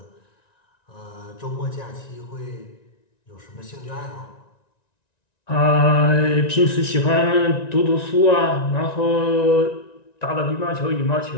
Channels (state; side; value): late; right; 1.9 ms